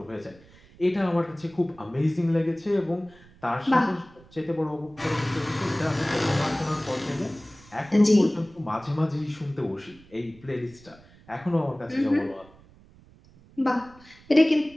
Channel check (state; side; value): noise; right; rumble, 25 dB below the sound